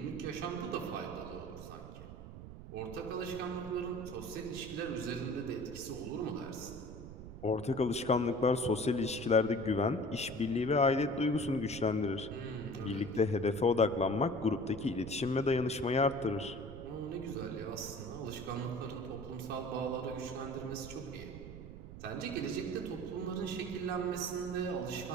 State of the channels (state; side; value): noise; right; rumble, 12 dB below the sound